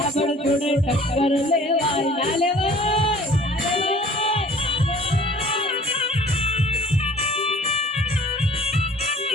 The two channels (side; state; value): both; normal; correlation 0.51